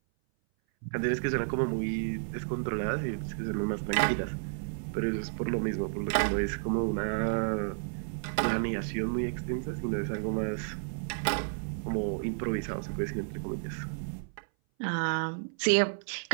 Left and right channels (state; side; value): silent; left; 57 dB below the other